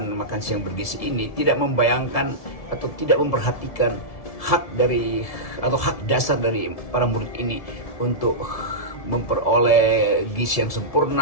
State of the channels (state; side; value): late; right; 1.7 ms